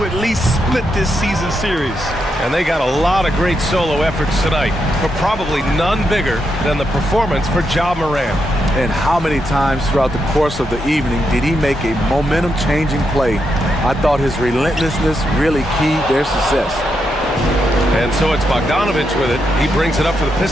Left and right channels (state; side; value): normal; both; correlation 0.82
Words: at least split this season series. And they got a lot of great solo efforts tonight, but probably none bigger than the performance for Ja Morant. And how many times throughout the course of the evening did he make a momentum-changing play? I thought his relentlessness really keyed their success. And so it's Bogdanovich with it. He brings it up for the